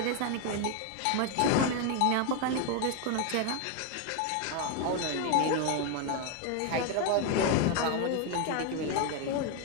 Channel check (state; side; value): different; both; correlation 0.01